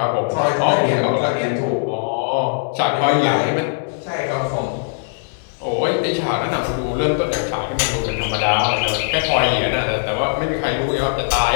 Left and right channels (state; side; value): silent; right; digital silence